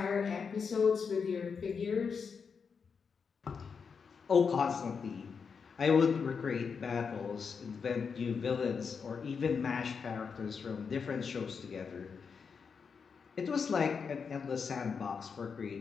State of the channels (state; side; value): quieter; right; 5.9 dB